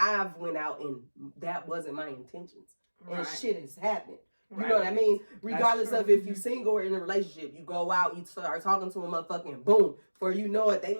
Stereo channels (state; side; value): inverted; both; correlation -1.00